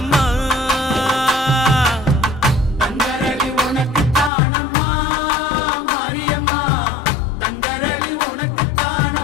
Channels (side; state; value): right; drops out; at 4.3 s